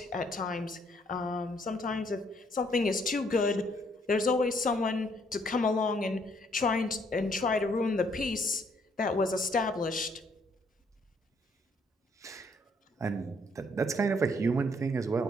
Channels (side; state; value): both; normal; correlation 0.68